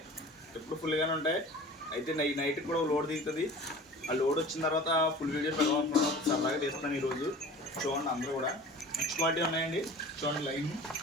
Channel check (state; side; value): normal; both; correlation 0.40